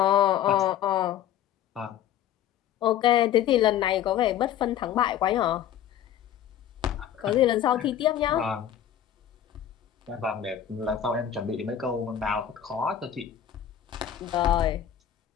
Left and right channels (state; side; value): quieter; right; 10.3 dB